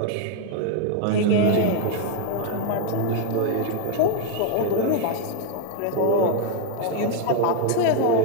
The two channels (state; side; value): different; both; correlation 0.00